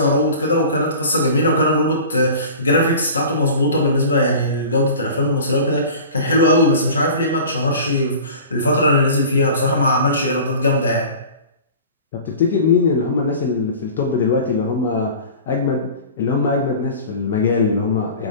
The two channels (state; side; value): inverted; both; correlation -0.40